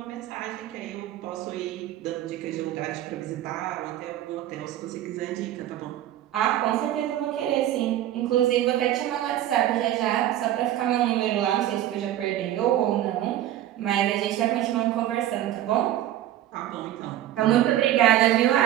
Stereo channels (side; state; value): left; quieter; 12.8 dB